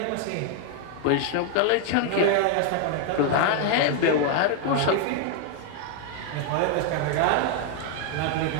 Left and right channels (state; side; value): different; both; correlation 0.00